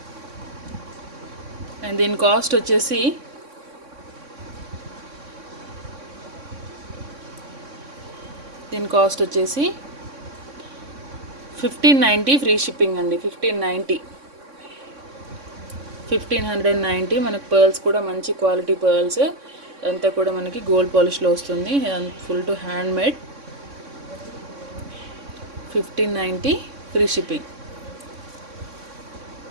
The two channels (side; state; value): left; late; 3.6 ms